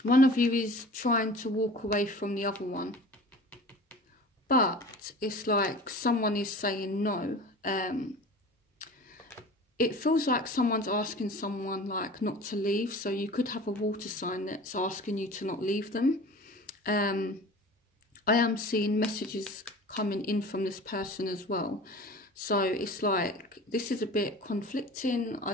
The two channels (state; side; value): normal; both; correlation 0.40